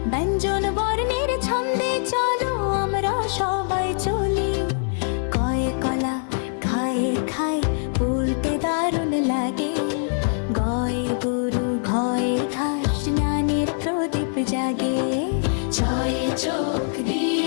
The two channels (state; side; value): silent; right; 63 dB below the other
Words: ব্যঞ্জন বর্ণের ছন্দে চলো আমরা সবাই চলি। কয়ে কলা খায়ে খায় বলতে দারুণ লাগে, গয়ে গরু ঘয়ে ঘাস জ্ঞানের প্রদীপ জাগে। ছয়ে চোখ